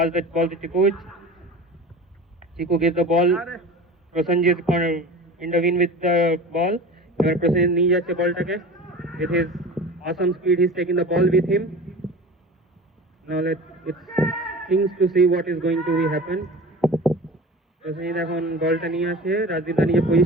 the ball to Chiku. Chiku gives the ball. Prosenjit intervene with the ball. Prosenjit নিয়ে যাচ্ছে বলটাকে। With his awesome speed, he's taking the ball with him. Now let's things to see what is going to happen. Prosenjit এখন বলটা নিয়ে আসে, রাজদীপদা নিজে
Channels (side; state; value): both; normal; correlation 0.36